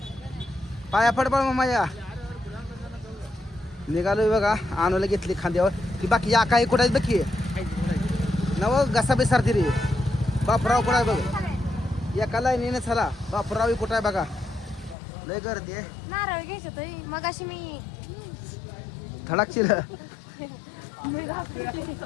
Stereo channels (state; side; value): drops out; right; at 15.0 s